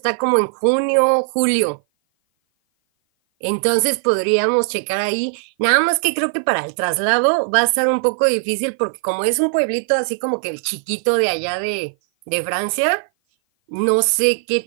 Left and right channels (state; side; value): silent; left; 56 dB below the other